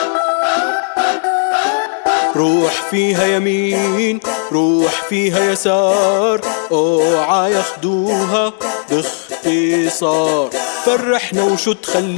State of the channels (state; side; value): silent; right; digital silence